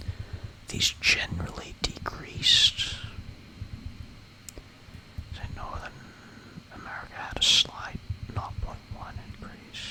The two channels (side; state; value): both; identical; correlation 1.00